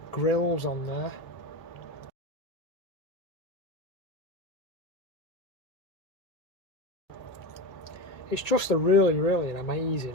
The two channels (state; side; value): late; right; 1.9 ms